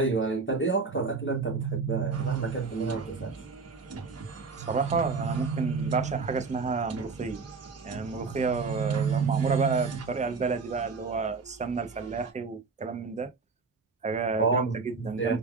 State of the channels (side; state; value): left; quieter; 4.5 dB